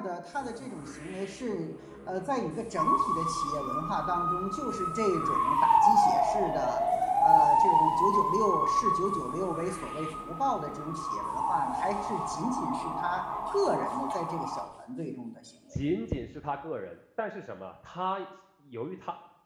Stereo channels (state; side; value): identical; both; correlation 1.00